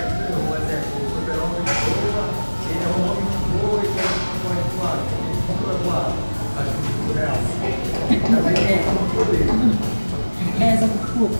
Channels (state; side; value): inverted; both; correlation -1.00